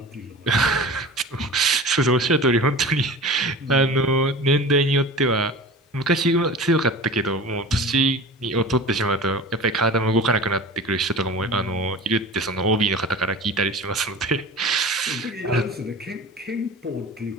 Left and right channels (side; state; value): both; normal; correlation 0.36